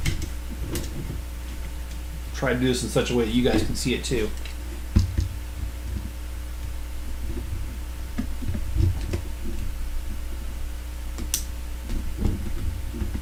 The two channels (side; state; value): both; identical; correlation 1.00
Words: try to do this in such a way that you guys can see it too.